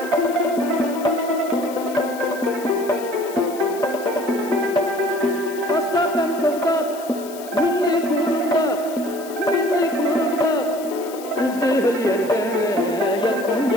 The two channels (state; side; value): noise; left; hiss, 17 dB below the sound